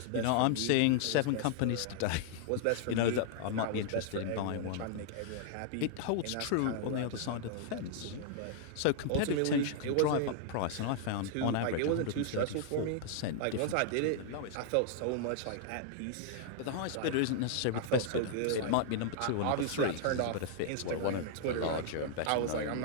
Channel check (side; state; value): both; different; correlation -0.01